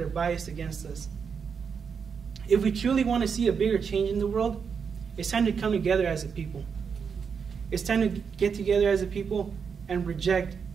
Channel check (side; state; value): left; quieter; 6.3 dB